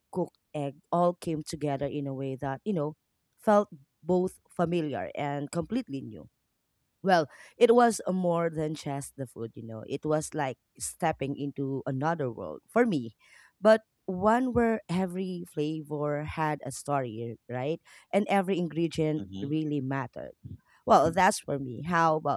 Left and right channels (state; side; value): identical; both; correlation 1.00